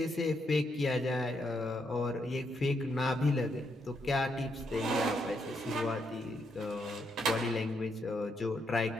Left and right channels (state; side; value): normal; both; correlation 0.78